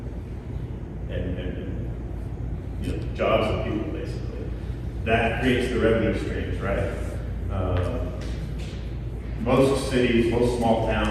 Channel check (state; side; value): identical; both; correlation 1.00